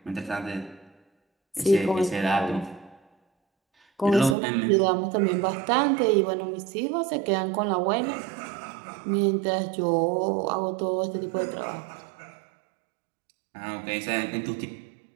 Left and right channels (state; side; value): drops out; left; at 4.4 s